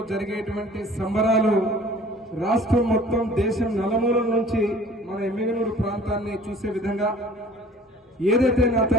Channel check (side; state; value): both; normal; correlation 0.48